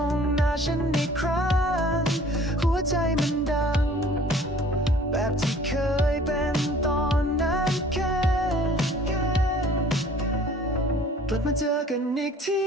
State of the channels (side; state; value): both; normal; correlation 0.51